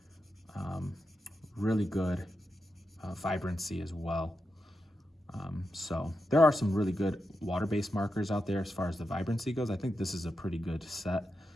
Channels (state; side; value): normal; both; correlation 0.87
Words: really good vibrancy as well. So there are some really good water-based markers out there as far as the vibrancy goes. I think this is a pretty good set